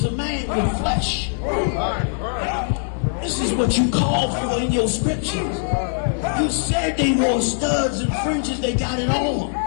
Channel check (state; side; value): silent; right; digital silence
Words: a man with flesh. This is what you called for in your scriptures. You said they wore studs and fringes, they got it on.